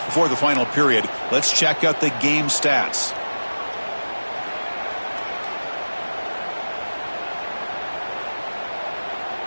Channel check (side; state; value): both; inverted; correlation -1.00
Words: Before the final period, let's check out the game stats.